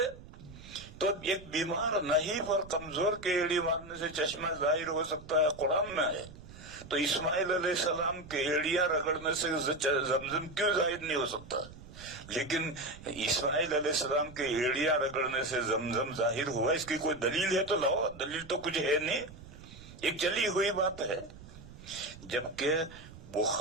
تو ایک بیمار نحیف اور کمزور کے ایڑی مارنے سے چشمہ ظاہر ہو سکتا ہے، قرآن میں ہے. تو اسماعیل علیہ السلام کے ایڑیاں رگڑنے سے زمزم کیوں ظاہر نہیں ہو سکتا؟ لیکن اسماعیل علیہ السلام کے ایڑیاں رگڑنے سے زمزم ظاہر ہوا، اس کی کوئی دلیل ہے تو لاؤ. دلیل تو کچھ ہے نہیں، ایک چلی ہوئی بات ہے. جبکہ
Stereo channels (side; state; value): right; noise; rumble, 17 dB below the sound